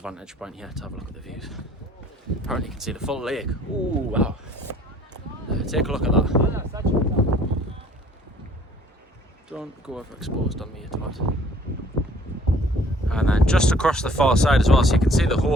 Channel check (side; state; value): both; normal; correlation 0.57